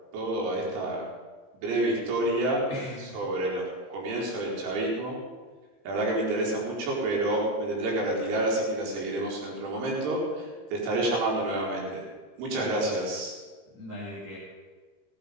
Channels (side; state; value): left; late; 15 ms